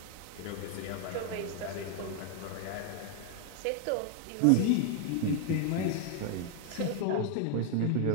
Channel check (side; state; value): both; different; correlation 0.00